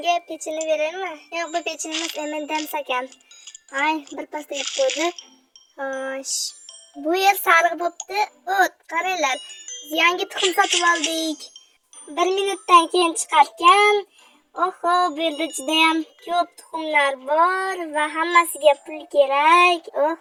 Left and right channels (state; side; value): identical; both; correlation 1.00